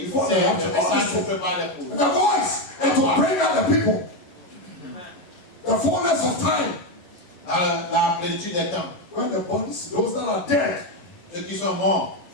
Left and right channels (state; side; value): late; right; 11 ms